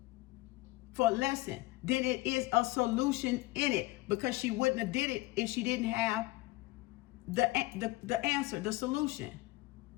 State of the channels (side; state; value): right; quieter; 19.4 dB